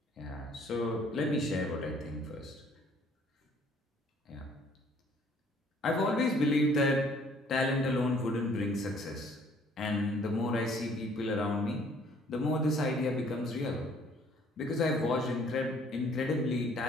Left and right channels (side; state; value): both; normal; correlation 0.60